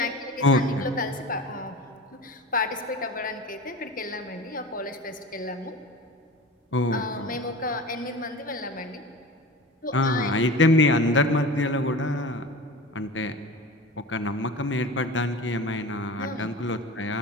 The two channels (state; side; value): normal; both; correlation 0.34